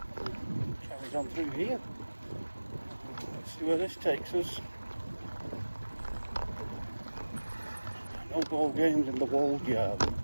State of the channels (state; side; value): inverted; both; correlation -1.00